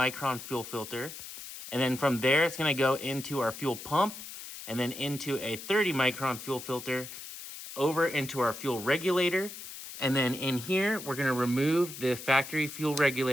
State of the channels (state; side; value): noise; left; hiss, 11 dB below the sound